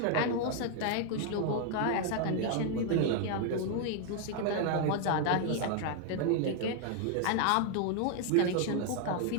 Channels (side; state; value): both; different; correlation 0.00